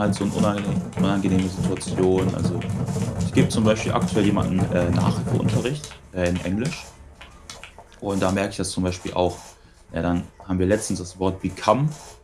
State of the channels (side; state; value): both; identical; correlation 1.00